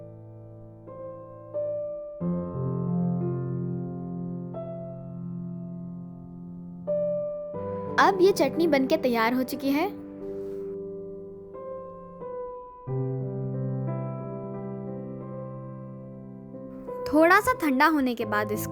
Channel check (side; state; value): both; identical; correlation 1.00